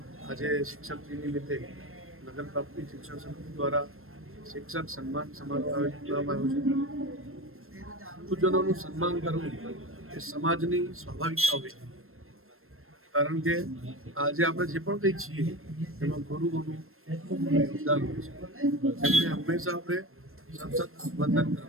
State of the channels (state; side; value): late; left; 0.62 ms